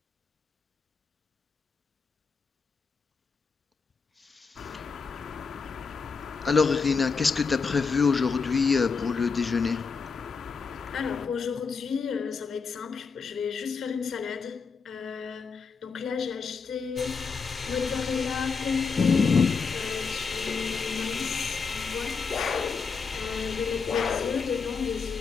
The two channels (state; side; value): quieter; right; 5.2 dB